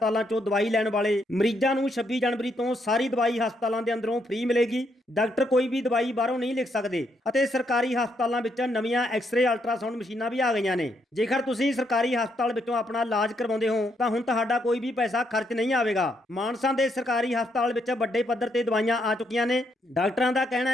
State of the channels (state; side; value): normal; both; correlation 0.76